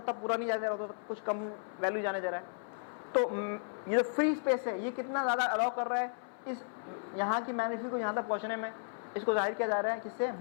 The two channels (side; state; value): right; silent; 55 dB below the other